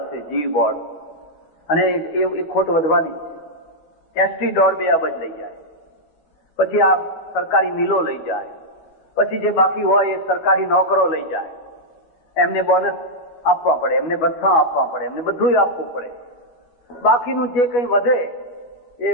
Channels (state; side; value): late; right; 12 ms